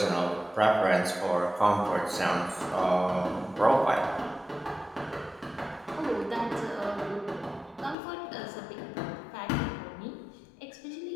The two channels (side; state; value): right; drops out; at 8.0 s